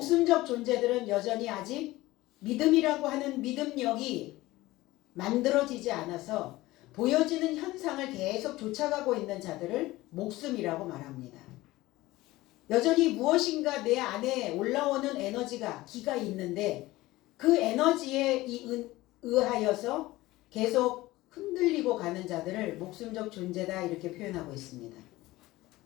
존재들은 여전히 아직 믿음이라고 하는 믿음력이 만들어지지 않아서 보여지는 현상을 계속 쫓아가고 있는 자들을 목숨이라고 말합니다. 여전히 무엇인가 내 안에 올라오는 에너지가 기가 있는데 그 에너지에 의하여서 계속 흔들리고 가는 자들을 목숨적 존재다 이렇게 표현하고 있습니다.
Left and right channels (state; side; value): quieter; right; 18.4 dB